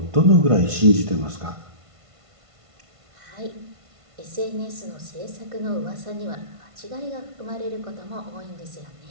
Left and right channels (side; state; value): left; late; 1.5 ms